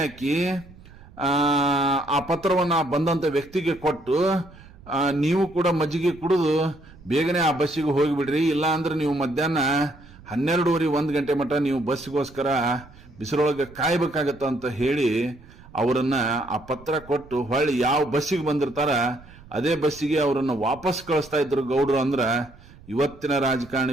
ಆ ಪತ್ರವನ್ನು ಬಂದಂತ ವ್ಯಕ್ತಿಗೆ ಕೊಟ್ಟು, ನೀವು ಕೂಡ ಮಜ್ಜಿಗೆ ಕುಡಿದು ಬೇಗನೆ ಆ ಬಸ್ಸಿಗೆ ಹೋಗಿಬಿಡ್ರಿ, ಇಲ್ಲ ಅಂದ್ರೆ ನೀವು ಮಧ್ಯಾಹ್ನ 12:30 1 ಗಂಟೆ ಮಟ್ಟ ನೀವು ಬಸ್ಸಿಗೋಸ್ಕರ ಬಿಸಿಲೊಳಗೆ ಕಾಯ್ಬೇಕಾಗತ್ತ ಅಂತ ಹೇಳಿ ಅವರನ್ನ ಆ ಪತ್ರ ಕೊಟ್ಟು ಹೊಳ್ಳಿ ಯಾವ ಬಸ್ಸಿಗೆ ಬಂದಿರ್ತಾರ ಅದೇ ಬಸ್ಸಿಗೆ ಅವರನ್ನ ವಾಪಸ್ ಕಳಿಸ್ತಾ ಇದ್ರು ಗೌಡ್ರು. ಅಂದ್ರ ಇವತ್ತಿನ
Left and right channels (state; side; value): noise; right; rumble, 22 dB below the sound